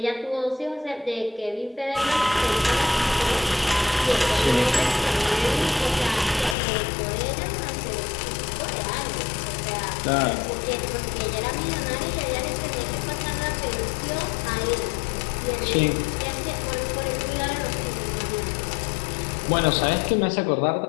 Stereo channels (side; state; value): right; drops out; at 6.6 s